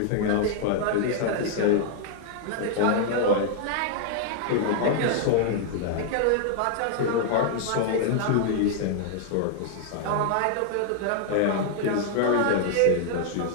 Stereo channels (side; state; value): both; different; correlation 0.00